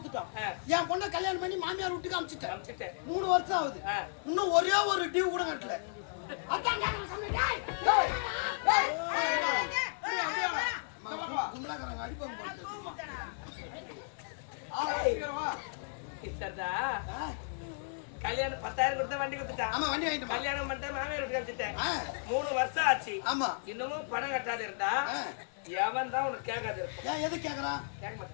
என் பொண்ணை கல்யாணம் பண்ணி மாமியார் வீட்டுக்கு அனுப்பிச்சிட்டேன் 3 வருஷம் ஆகுது இன்னும் ஒரே ஒரு டியூ கூட கட்டல அதான் கும்பலாக்காரங்க அடிப்பாங்க கல்யாணம் 10,000 கொடுத்த வண்டி கொடுத்துட்டான் ஆமா வண்டி வாங்கிட்டு கல்யாணம் பண்ணிட்டு மாமியார் வீட்டுக்கு அனுப்பிச்சிட்டேன் 3 வருஷம் ஆச்சு ஆமா இன்னமும் பணம் கட்டாது இருந்தா எவன் தான் உனக்கு கேட்காது ஏன் எது கேக்குறான் கேட்க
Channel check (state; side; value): silent; right; digital silence